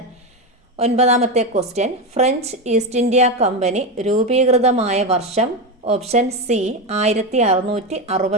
9-ാമത്തെ question. French East India company രൂപീകൃതമായ വർഷം? Option C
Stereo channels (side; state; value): both; normal; correlation 0.14